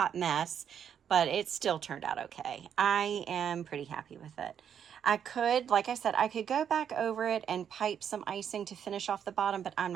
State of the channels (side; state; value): left; quieter; 8.4 dB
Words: mess, but it still turned out okay. I am pretty happy with it. I could, like I said, I could go back over it and pipe some icing to finish off the bottom, but I'm